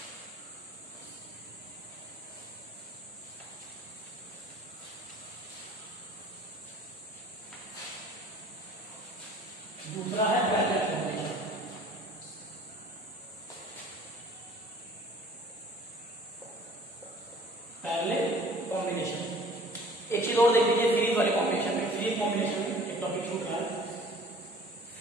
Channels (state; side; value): normal; both; correlation 0.50